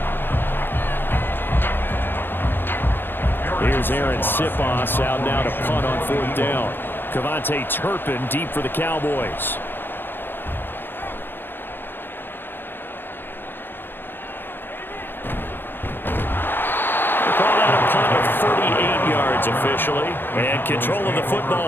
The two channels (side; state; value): right; late; 0.099 ms